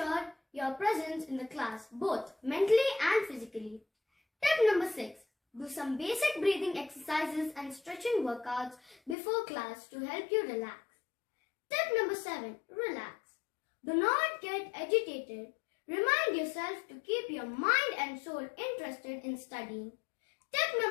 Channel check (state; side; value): drops out; right; at 9.2 s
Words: your presence in the class, both mentally and physically. Tip number 6. Do some basic breathing exercises and stretching workouts before class to help you relax. Tip number 7. Relax. Do not get agitated. Remind yourself to keep your mind and soul interested in studying. Tip